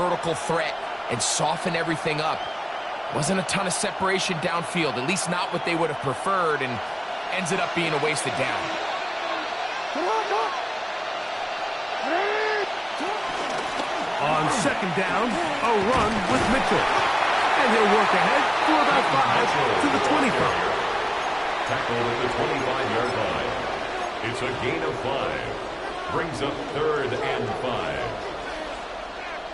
threat, and soften everything up. Wasn't a ton of separation downfield, at least not what they would have preferred, and ends it up being a wasted down. On 2nd down, a run with Mitchell. And he'll work ahead for about 5 to the 25. Tackled at the 25-yard line. It's a gain of 5. Brings up 3rd and 5.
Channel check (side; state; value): both; identical; correlation 1.00